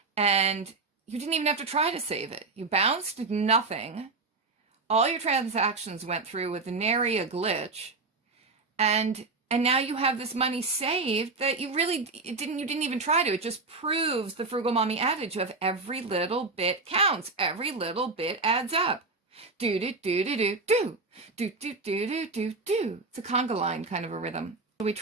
And you didn't even have to try to save it. You bounced nothing. All your transactions went through with nary a glitch. And now you have this money saved that you didn't even try to. It just proves the Frugal Mommy adage of every little bit counts. Every little bit adds up. Do do do do do do do do do do do do. It's a conga line kind of a rhythm. Shall we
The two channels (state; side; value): quieter; left; 3.8 dB